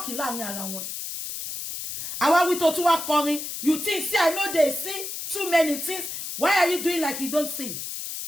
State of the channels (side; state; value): left; noise; hiss, 6 dB below the sound